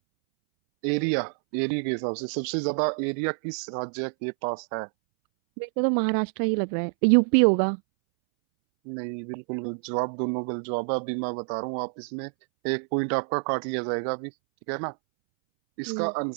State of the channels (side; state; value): left; silent; 60 dB below the other